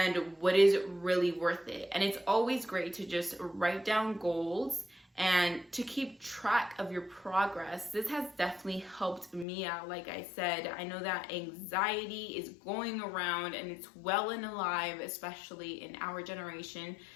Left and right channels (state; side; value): drops out; right; at 9.5 s